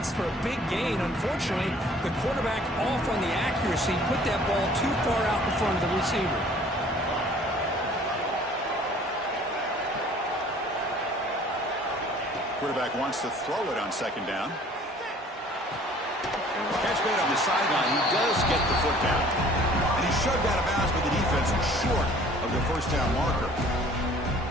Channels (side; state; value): both; normal; correlation 0.53